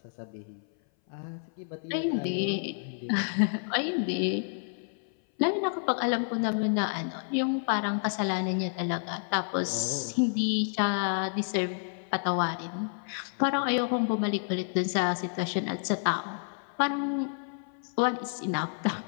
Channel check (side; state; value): right; silent; 57 dB below the other